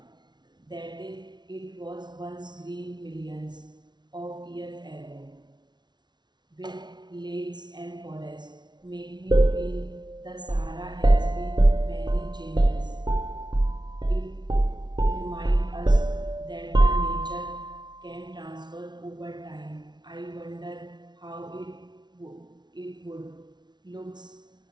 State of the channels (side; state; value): left; late; 0.20 ms